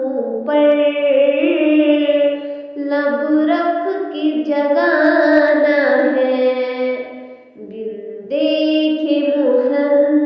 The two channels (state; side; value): identical; both; correlation 1.00